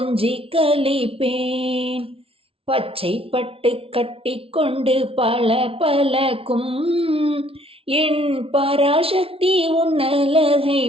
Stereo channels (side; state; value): left; late; 0.27 ms